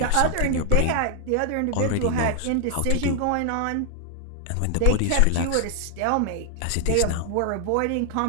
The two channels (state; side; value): different; both; correlation 0.00